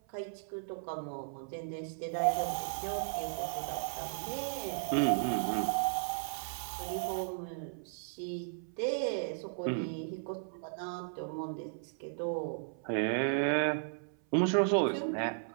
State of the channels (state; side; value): silent; left; 54 dB below the other